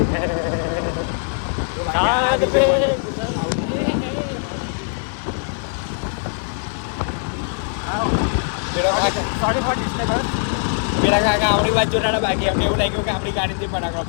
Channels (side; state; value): right; silent; digital silence